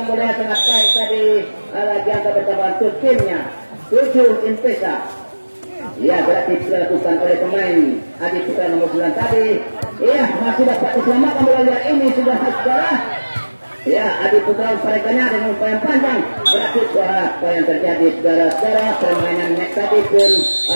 bola sangat baik tadi. Lagi angka bertambah untuk timnya. 7 Impesa. Ya, berarti dilakukan oleh pemain Adi Putra nomor 9 tadi. Iya, masih dapat diselamatkan bola liar ini sudah saudara. Ya, Adi Putra umparekannya dengan umpan yang panjang. Berarti apa yang terjadi saudara-saudara, permainan net tadi pun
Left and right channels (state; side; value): inverted; both; correlation -1.00